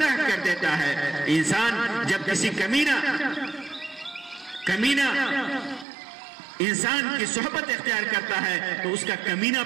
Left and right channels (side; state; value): left; drops out; at 5.9 s